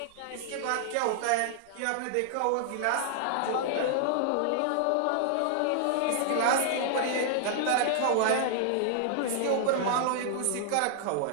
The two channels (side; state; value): both; different; correlation 0.00